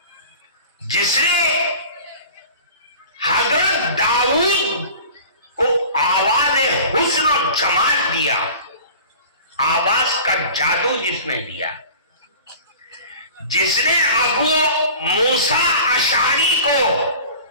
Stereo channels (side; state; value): both; inverted; correlation -0.41